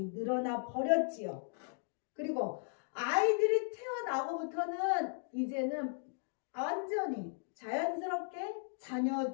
늘어나 버렸지요. 그리고 아이들이 태어나고부터는 이제는 완전히 자연스럽게 자녀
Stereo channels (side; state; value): right; silent; digital silence